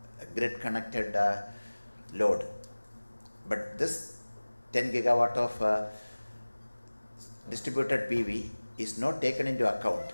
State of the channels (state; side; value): inverted; both; correlation -1.00